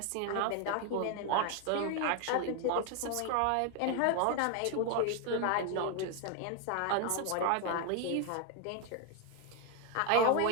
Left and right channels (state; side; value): different; both; correlation 0.01